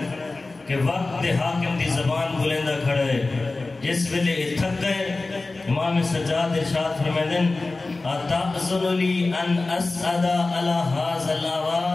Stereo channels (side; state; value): right; quieter; 3.4 dB